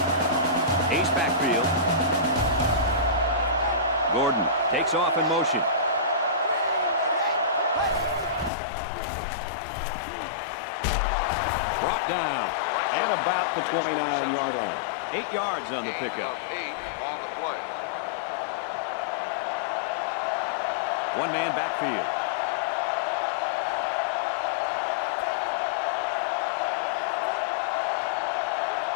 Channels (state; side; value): drops out; right; at 8.5 s